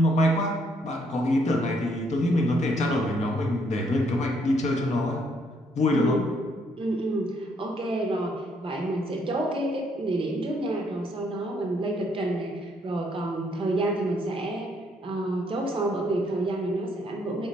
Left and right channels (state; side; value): normal; both; correlation 0.70